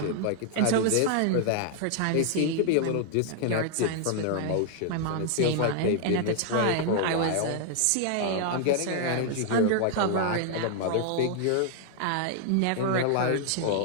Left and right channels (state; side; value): different; both; correlation 0.00